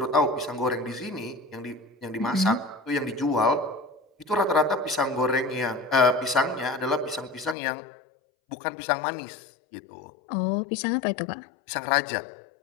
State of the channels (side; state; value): right; drops out; at 7.6 s